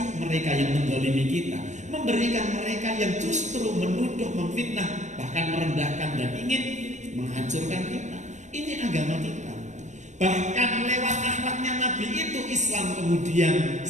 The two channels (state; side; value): late; left; 0.34 ms